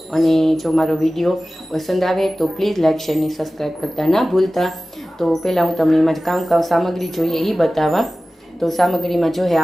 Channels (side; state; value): both; normal; correlation 0.96